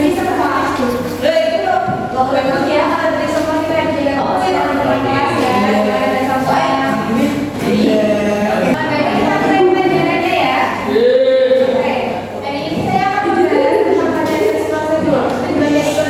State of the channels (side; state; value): both; identical; correlation 1.00